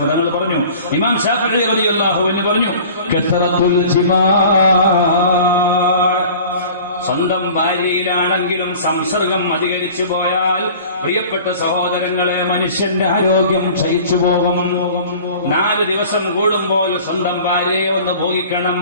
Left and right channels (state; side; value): inverted; both; correlation -0.44